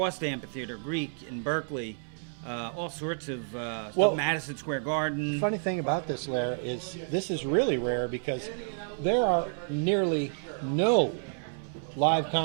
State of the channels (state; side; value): silent; left; 58 dB below the other